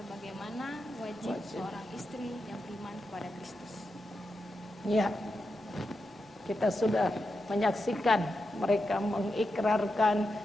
wajib seorang istri yang beriman kepada Kristus. Ya, kita sudah menyaksikan mereka mengikrarkan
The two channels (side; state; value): both; normal; correlation 0.88